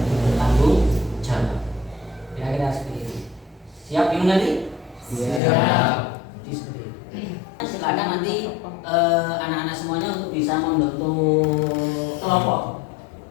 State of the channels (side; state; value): right; drops out; at 5.4 s